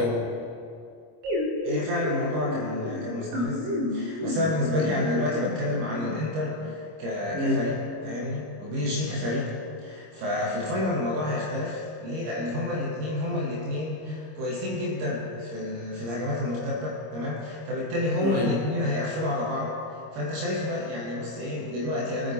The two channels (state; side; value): late; left; 26 ms